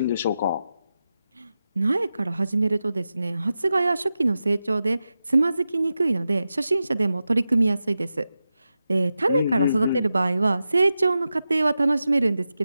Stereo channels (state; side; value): inverted; both; correlation -0.91